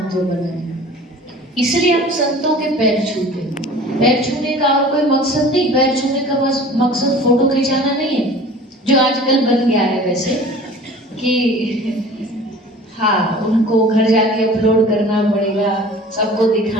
बना है, इसलिए हम संतों के पैर छूते हैं। पैर छूने का और कोई मकसद नहीं, पैर छूने का बस मकसद फोटो खिंचाना नहीं है, जो आजकल बन गया है वैसे कि हाँ उनको घर जाके अपलोड करना पड़ेगा, सबको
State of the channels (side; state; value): both; normal; correlation 0.43